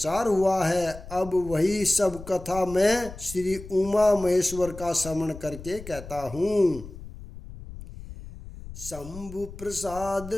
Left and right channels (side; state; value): left; noise; rumble, 14 dB below the sound